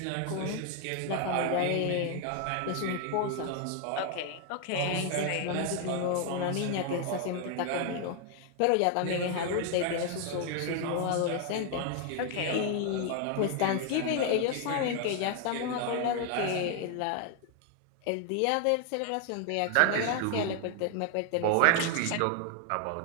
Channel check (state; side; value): different; both; correlation 0.00